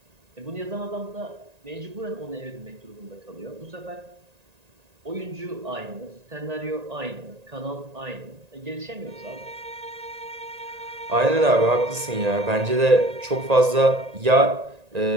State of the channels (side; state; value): left; late; 1.9 ms